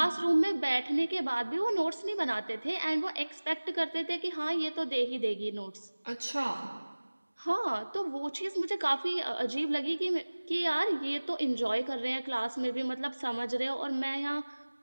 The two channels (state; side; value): inverted; both; correlation -1.00